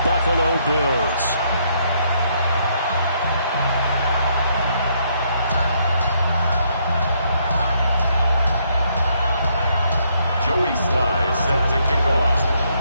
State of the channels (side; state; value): both; inverted; correlation -0.72